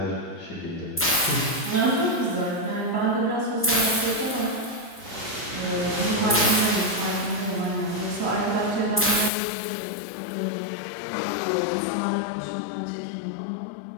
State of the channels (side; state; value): right; drops out; at 9.3 s